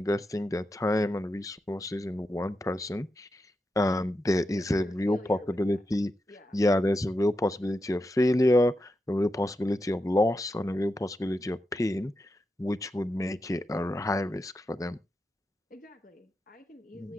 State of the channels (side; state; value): both; normal; correlation 0.87